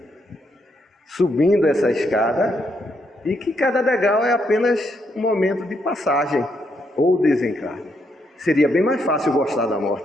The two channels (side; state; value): both; normal; correlation 0.77